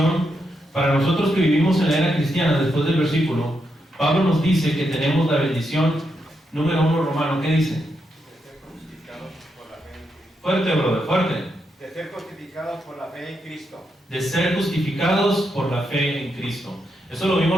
Para nosotros que vivimos en la era cristiana, después del versículo, Pablo nos dice que tenemos la bendición número 1 romano. ¿Qué dice? De ser justificados por la fe en Cristo. Fuerte, brother, fuerte. De ser justificados por la fe en Cristo. De ser justificados por la fe en Cristo. Eso lo vimos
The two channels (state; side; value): normal; both; correlation 0.82